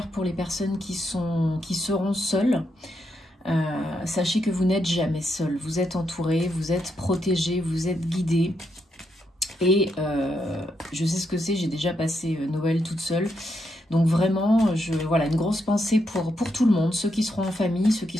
pour les personnes qui seront seules. Sachez que vous n'êtes jamais seul, vous êtes entouré, vous êtes protégé, vous êtes guidé. Et je sais ce que c'est, j'ai déjà passé Noël toute seule. Donc vraiment, voilà, une grosse pensée pour tout le monde, ceux qui seront en famille, ceux qui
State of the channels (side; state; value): both; normal; correlation 0.80